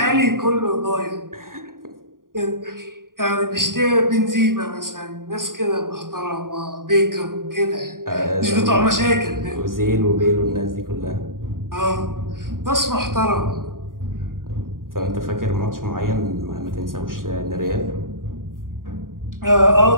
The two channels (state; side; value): late; left; 0.90 ms